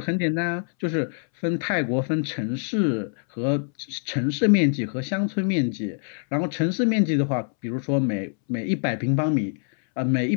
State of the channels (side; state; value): right; silent; 62 dB below the other